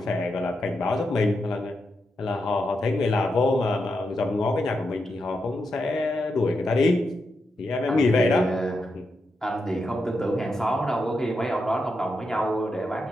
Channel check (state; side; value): normal; both; correlation 0.85